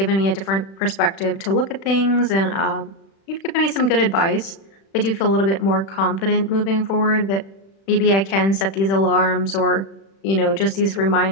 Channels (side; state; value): right; late; 36 ms